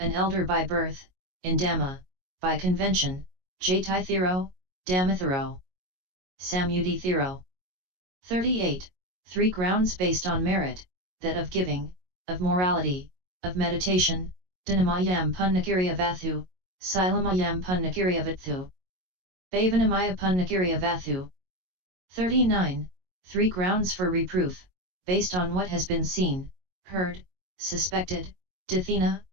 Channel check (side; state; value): left; late; 22 ms